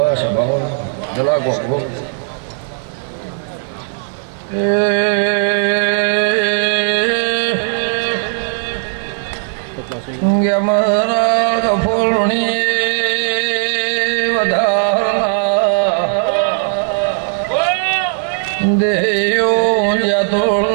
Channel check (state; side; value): silent; left; 55 dB below the other